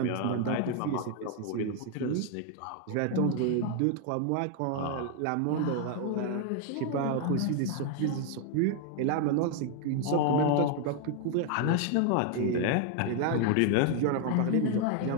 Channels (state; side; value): different; both; correlation 0.00